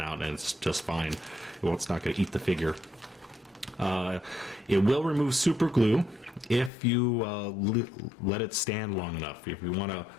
out, and it's just fine. Well, it's not going to eat the figure. It will remove super glue if you let it stand long enough. If you want to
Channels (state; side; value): drops out; right; at 6.7 s